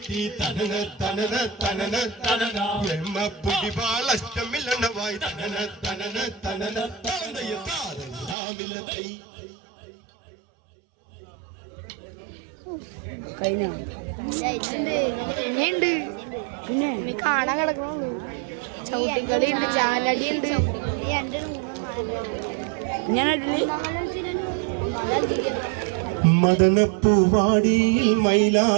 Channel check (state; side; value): drops out; left; at 8.3 s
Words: തനന തനന തനന തനന എമ്മ പൊടിവാള അറ്റമില്ലെണ്ണവായി തനന തനന തനന തനയ താരമില്ലതൈ പിന്നെയുണ്ട് പിന്നെ കാണാൻ കിടക്കണുള്ളൂ ചവിട്ടിക്കളി ഉണ്ട് ചാലടി ഉണ്ട് മദനപ്പൂവാടിയിൽ